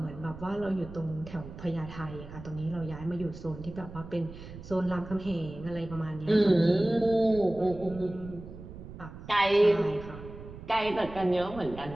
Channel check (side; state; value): right; noise; rumble, 14 dB below the sound